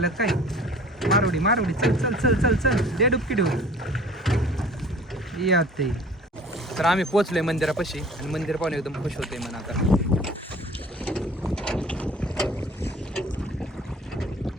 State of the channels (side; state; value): both; normal; correlation 0.47